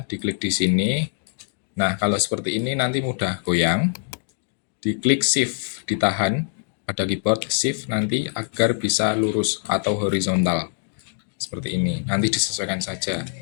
diklik di sini. Nah, kalau seperti ini nanti mudah goyang. Diklik shift, ditahan pada keyboard shift nanti agar bisa lurus atau horizontal. Seperti ini, nanti disesuaikan saja.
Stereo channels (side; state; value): right; silent; digital silence